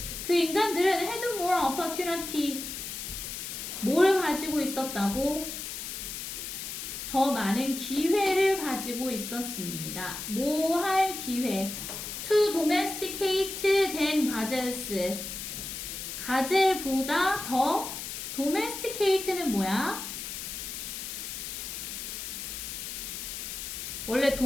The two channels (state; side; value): noise; left; hiss, 7 dB below the sound